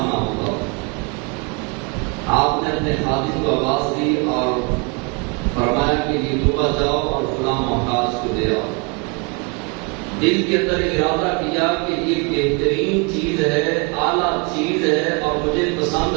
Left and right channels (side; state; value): left; quieter; 32.0 dB